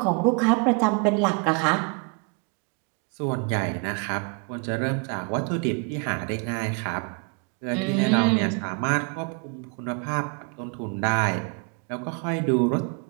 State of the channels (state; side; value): quieter; left; 33.3 dB